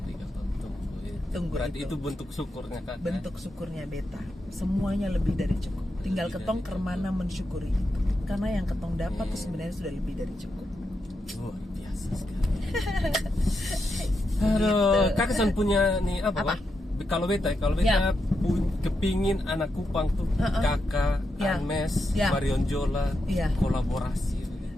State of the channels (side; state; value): both; normal; correlation 0.85